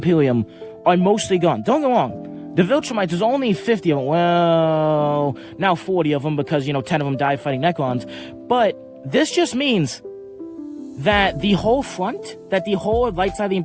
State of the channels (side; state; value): both; identical; correlation 1.00